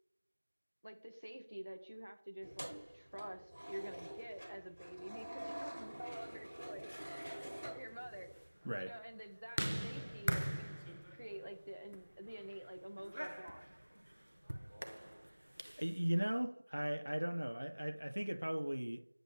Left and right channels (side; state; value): both; inverted; correlation -1.00